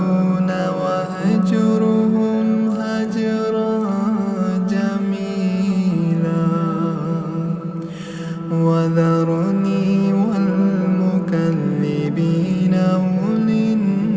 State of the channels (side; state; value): both; identical; correlation 1.00